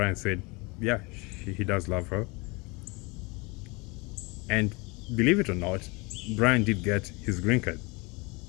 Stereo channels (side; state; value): right; quieter; 27.3 dB